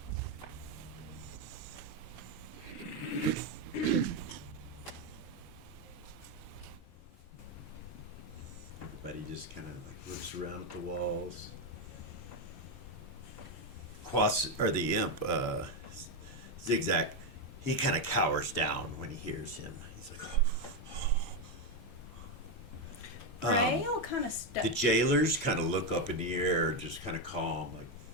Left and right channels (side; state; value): both; normal; correlation 0.06